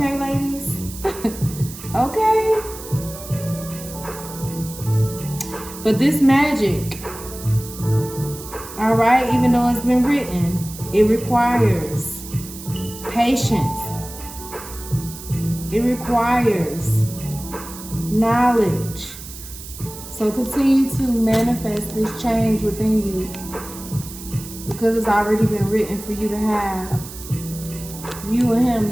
ladies? Okay? But this magic, all right, even though it's been written, it requires patience. It requires knowledge. So continue to manifest this change within you, because it's already been written for you to have. You and him,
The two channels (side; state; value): right; noise; hiss, 13 dB below the sound